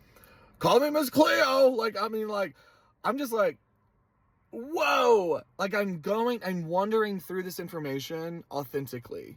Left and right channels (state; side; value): identical; both; correlation 1.00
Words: call me Miss Cleo. Like, I mean, like, I'm just like, whoa. Like, I'm wandering through this information